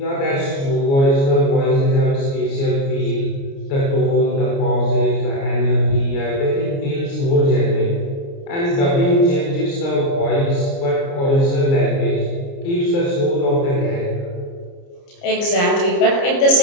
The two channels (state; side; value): late; right; 29 ms